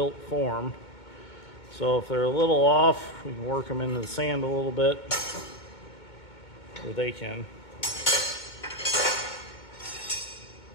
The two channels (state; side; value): late; right; 2.2 ms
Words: form. So if they're a little off, we can work them into the sand a little bit, or they can.